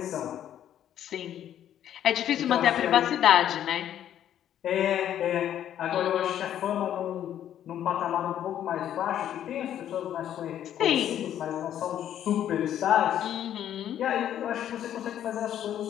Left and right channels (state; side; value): quieter; right; 10.7 dB